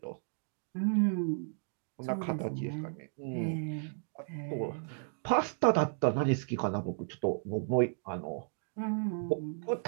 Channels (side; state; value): left; silent; digital silence